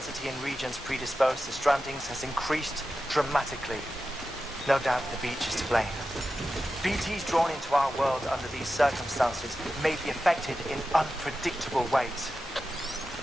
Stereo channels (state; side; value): normal; both; correlation 0.92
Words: in regions predisposed to strandings has increased dramatically. No doubt the beach is to blame. BTs drawn into our world under these circumstances may be affected in unpredictable ways.